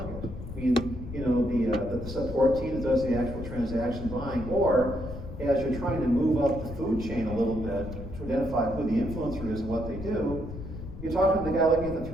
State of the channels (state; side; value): noise; left; rumble, 10 dB below the sound